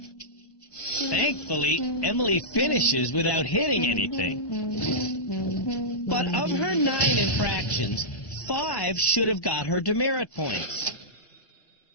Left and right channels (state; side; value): late; right; 1.1 ms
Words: Thankfully, Emily finishes without hitting anything. But of her 9 infractions, 5 should have got her demerit points.